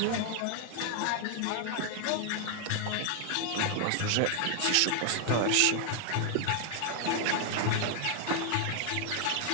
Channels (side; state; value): both; different; correlation 0.00